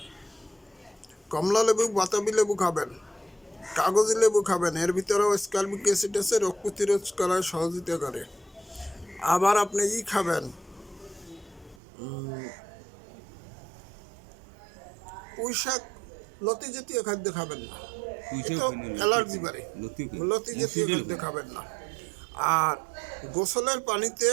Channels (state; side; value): drops out; left; at 11.8 s